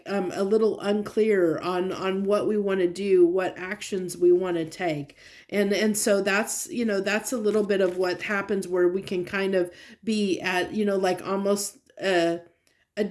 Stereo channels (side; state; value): both; identical; correlation 1.00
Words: a little unclear on what we want to do, what actions we want to take. And so that's, that's a little bit of what happens, where we can kind of be at, like almost a